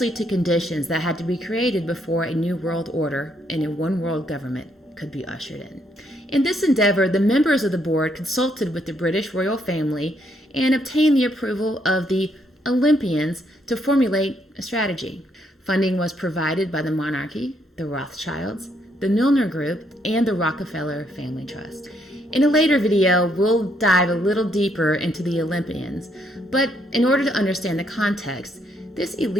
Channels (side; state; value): both; normal; correlation 0.73